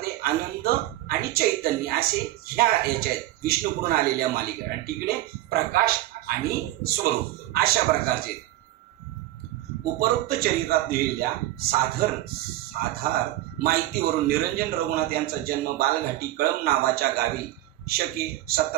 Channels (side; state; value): left; quieter; 15.5 dB